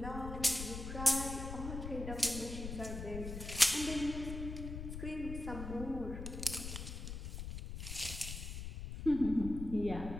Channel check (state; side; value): noise; left; rumble, 7 dB below the sound